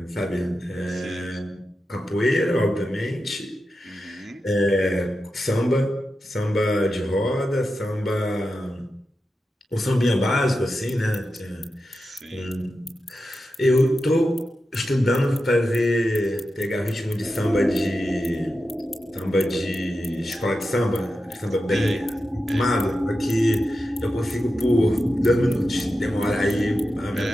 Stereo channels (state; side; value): normal; both; correlation 0.90